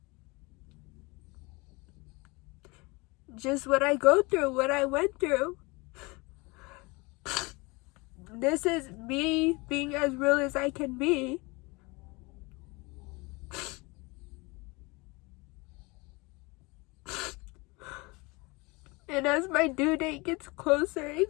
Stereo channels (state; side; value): quieter; right; 25.9 dB